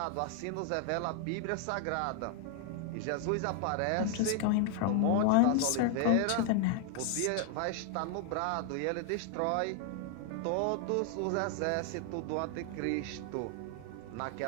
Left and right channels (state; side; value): different; both; correlation 0.00